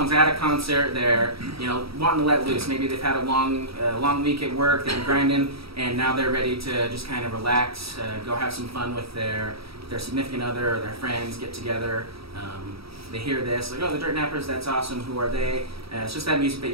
at a concert, they're wanting to let loose. Maybe they've had a long week at work, they've been grinding, and now they're ready to just kind of relax, go have some fun with their significant other or their friends, get together. They hear this, like, oh, the Dirt Nappers, that's awesome. Who are they? It's just that music that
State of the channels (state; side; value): late; left; 0.76 ms